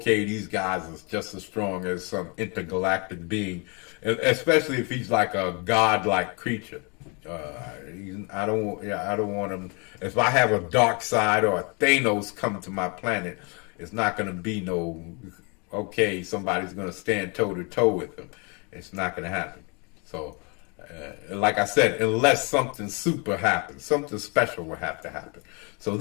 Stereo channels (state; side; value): quieter; right; 32.4 dB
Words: these guys are just as strong as some intergalactic being, especially if he's like a godlike creature. I don't want him. If I have a dark side or a Thanos come to my planet, it's not going to be no, okay, somebody's going to stand toe to toe with him. It's not going to happen. So, like I said, unless something super happens, something special will have to happen. So